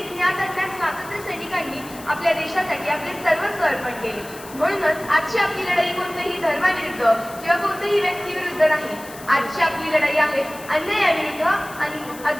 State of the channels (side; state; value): left; noise; hiss, 17 dB below the sound